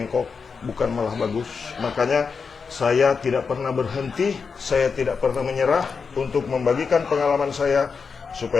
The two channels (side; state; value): right; quieter; 5.4 dB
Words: bukan malah bagus. Makanya saya tidak pernah berhenti, saya tidak pernah menyerah untuk membagikan pengalaman saya